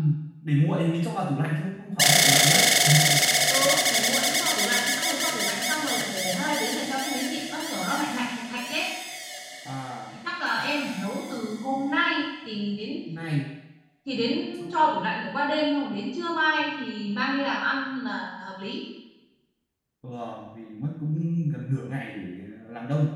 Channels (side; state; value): both; identical; correlation 1.00